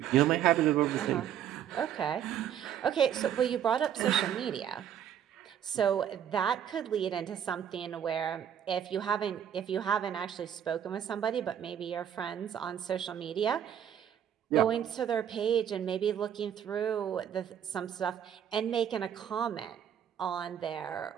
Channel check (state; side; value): quieter; left; 9.4 dB